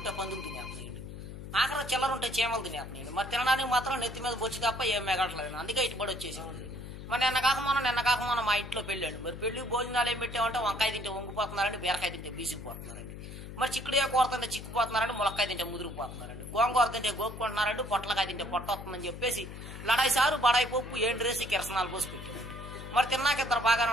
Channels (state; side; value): noise; left; hum, 11 dB below the sound